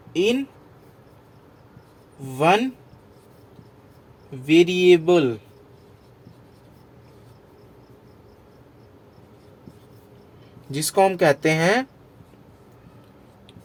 इन वन वेरिएबल। जिसको हम कहते हैं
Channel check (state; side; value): identical; both; correlation 1.00